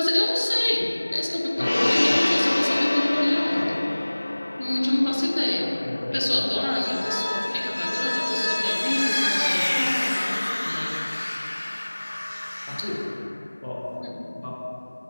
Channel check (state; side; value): inverted; both; correlation -1.00